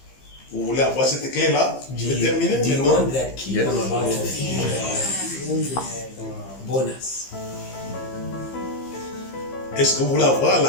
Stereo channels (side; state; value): right; late; 15 ms